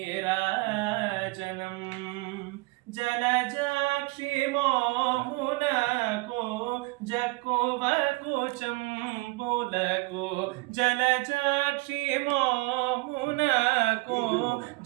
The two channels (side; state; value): left; quieter; 24.6 dB